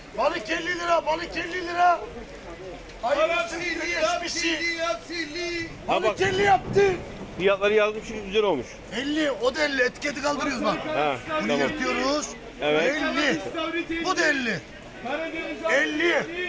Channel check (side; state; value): both; identical; correlation 1.00